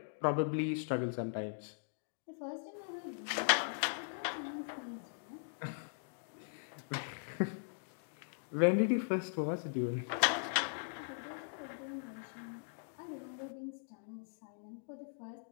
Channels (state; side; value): silent; right; digital silence